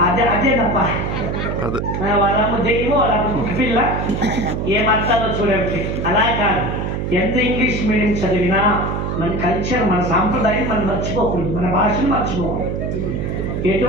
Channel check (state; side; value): noise; right; hum, 2 dB below the sound